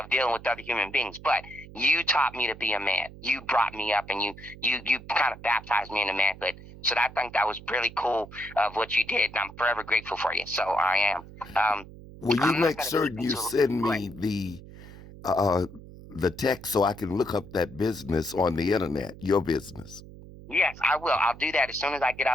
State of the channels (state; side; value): noise; right; hum, 17 dB below the sound